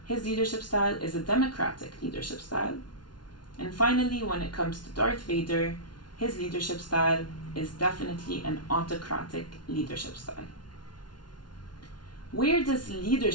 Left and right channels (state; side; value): late; right; 0.70 ms